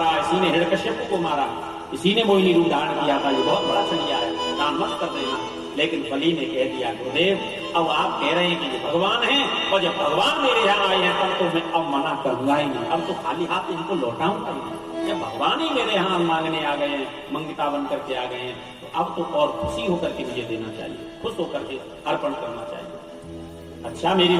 इसी ने हिरण्यकश्यप को मारा, इसी ने मोहिनी रूप धारण किया था। ये बहुत बड़ा छलिया है, दान मत कर देना। लेकिन बलि ने कह दिया, गुरुदेव अब आप कह रहे हैं कि ये भगवान हैं, और जब भगवान मेरे यहाँ आए हैं तब तो मैं अब मना करूंगा ही नहीं, अब तो खाली हाथ इनको लौटाऊंगा ही नहीं। जब भगवान ही मेरे यहाँ मांगने आ गए हैं, मंगिता बन करके आ गए हैं, तो अब तो और खुशी होकर के मुझे देना चाहिए, खुश होकर के अर्पण करना चाहिए। अच्छा मेरी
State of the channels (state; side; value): identical; both; correlation 1.00